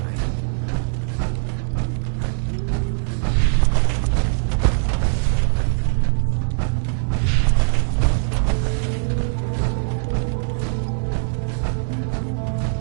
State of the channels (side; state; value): left; silent; 65 dB below the other